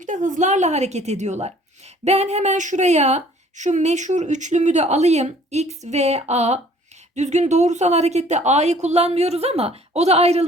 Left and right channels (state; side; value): normal; both; correlation 0.56